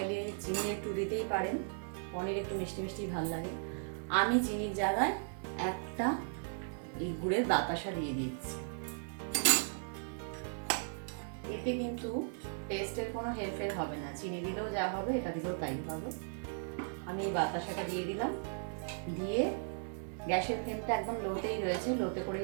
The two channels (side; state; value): left; silent; digital silence